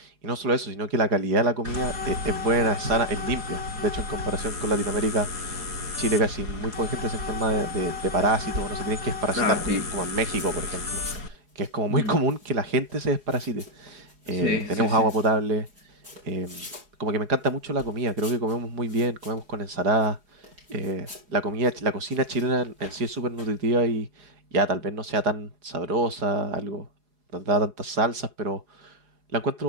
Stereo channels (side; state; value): left; late; 4.8 ms